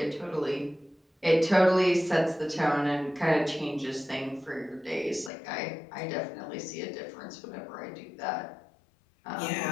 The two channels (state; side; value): drops out; right; at 5.3 s